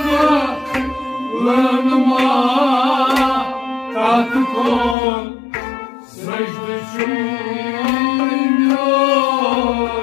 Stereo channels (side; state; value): right; drops out; at 5.0 s